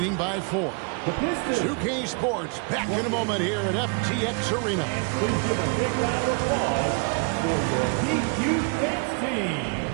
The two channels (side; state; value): left; quieter; 35.4 dB